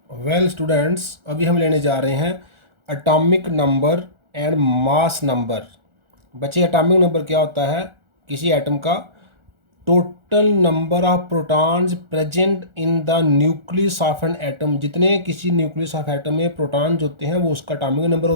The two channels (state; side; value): late; left; 1.4 ms